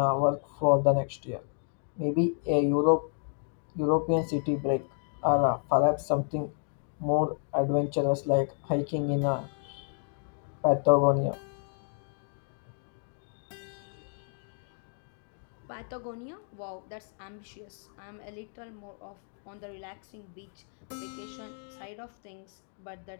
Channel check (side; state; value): right; silent; 57 dB below the other